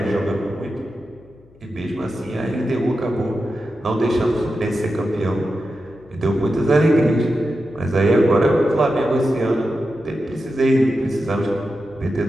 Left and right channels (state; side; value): noise; left; hum, 28 dB below the sound